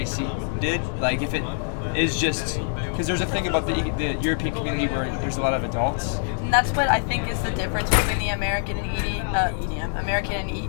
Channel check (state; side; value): silent; right; 62 dB below the other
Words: did. Like if it is just because there's a thing about the European community where there's a lot of adults. And that's what I think is the difference between the American and EDM, American